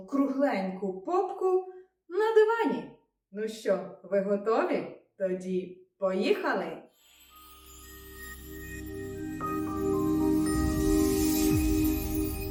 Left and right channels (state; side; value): identical; both; correlation 1.00